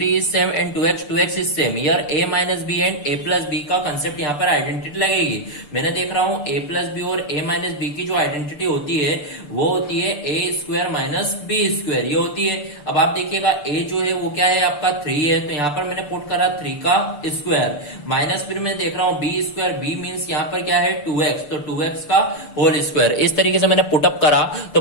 is same and 2x is same. Here a minus B and a plus B का कंसेप्ट यहाँ पर आइडेंटिटी लगेगी। मैंने देख रहा हूँ a प्लस बी और a माइनस बी की जो आइडेंटिटी होती है वो होती है a square minus B square, ये होती है। अब आप देखिएगा a जो है वो क्या है आपका 3 है, तो यहाँ पर मैंने पुट करा 3 का स्क्वायर माइनस, फिर मैं देख रहा हूँ b स्क्वायर, b मीन्स यहाँ पर क्या है 2x, तो 2x का होल स्क्वायर। इस तरीके से मैंने पुटअप करा। तो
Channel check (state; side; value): late; right; 6.8 ms